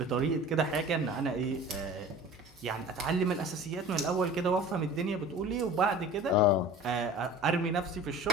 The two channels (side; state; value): both; normal; correlation 0.41